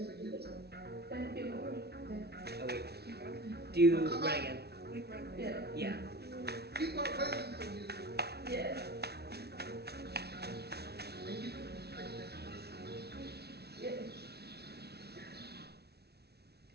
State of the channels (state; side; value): late; left; 0.48 ms